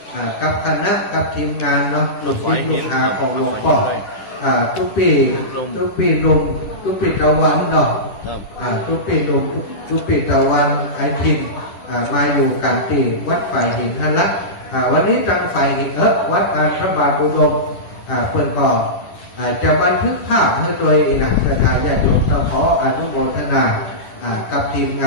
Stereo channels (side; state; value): right; late; 10 ms